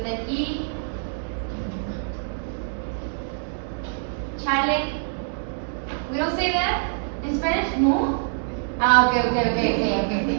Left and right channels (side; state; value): left; silent; digital silence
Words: an E. Chale. We don't say that in Spanish? No? Okay.